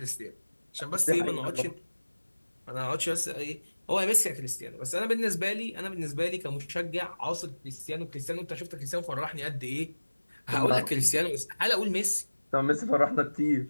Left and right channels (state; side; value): inverted; both; correlation -1.00